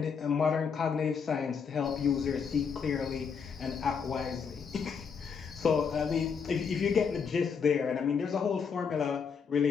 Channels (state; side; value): quieter; right; 6.2 dB